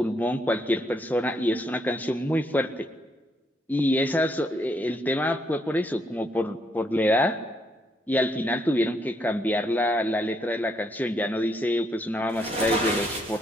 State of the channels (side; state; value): both; normal; correlation 0.74